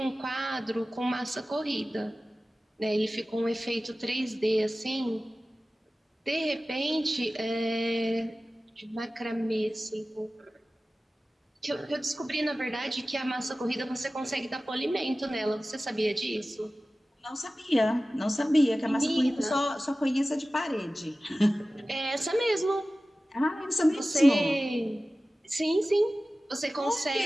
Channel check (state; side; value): normal; both; correlation 0.96